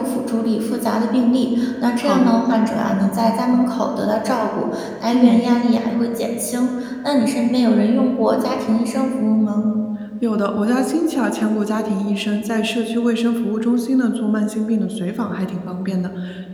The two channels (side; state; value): both; identical; correlation 1.00